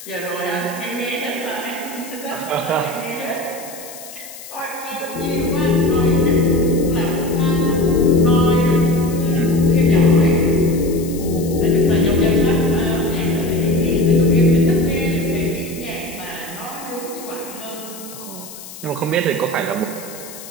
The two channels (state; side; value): noise; left; hiss, 15 dB below the sound